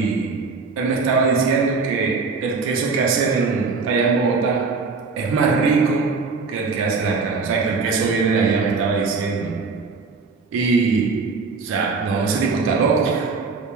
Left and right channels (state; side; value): quieter; left; 4.5 dB